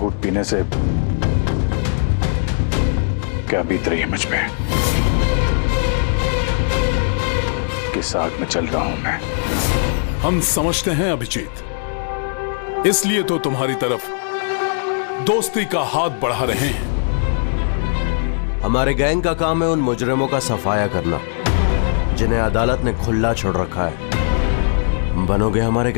पीने से क्या बीत रही है मुझ पे। किस आग में चल रहा हूं मैं। हम समझते हैं अभिजीत, इसलिए तो तुम्हारी तरफ दोस्ती का हाथ बढ़ा रहे हैं। हमारे गैंग का काम है उन मुजरिमों का सफाया करना जिन्हें अदालत ने खुला छोड़ रखा है। बनोगे हमारे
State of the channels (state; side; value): silent; right; digital silence